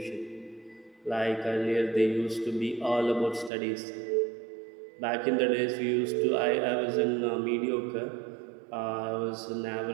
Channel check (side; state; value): left; drops out; at 3.5 s